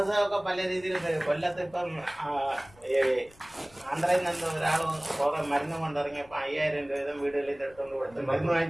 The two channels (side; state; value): left; noise; rumble, 26 dB below the sound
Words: പല രീതിയിൽ കൊല്ലത്ത് ഇപ്പം ആന്ധ്രയിൽ നിന്ന് ഒരാൾ മരുന്ന് കൊണ്ടിറങ്ങിയപ്പോ 5000 രൂപ വീതം വീടുകളിൽ എടുത്തുകൊണ്ട് കൊടുത്ത് മരുന്ന്